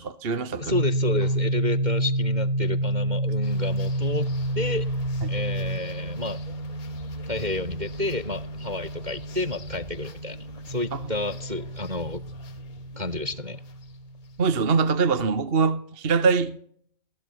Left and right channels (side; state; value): left; late; 2.1 ms